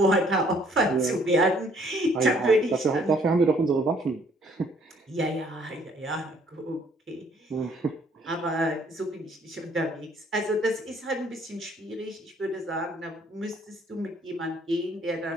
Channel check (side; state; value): both; normal; correlation 0.62